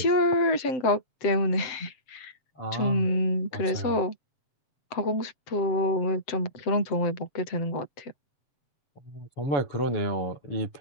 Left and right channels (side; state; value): right; late; 7.7 ms